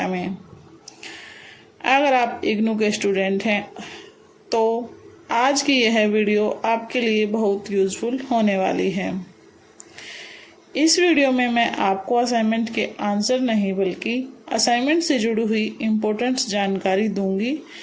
में। अगर आप इग्नू के स्टूडेंट हैं तो आज की यह वीडियो आपके लिए बहुत यूज़फुल होने वाली है। इस वीडियो में मैं आपको असाइनमेंट के आंसर नहीं बल्कि असाइनमेंट से जुड़ी हुई इम्पोर्टेंट जानकारी दूंगी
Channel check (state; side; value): identical; both; correlation 1.00